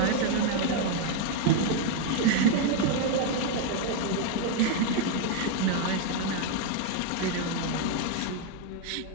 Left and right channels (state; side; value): different; both; correlation 0.01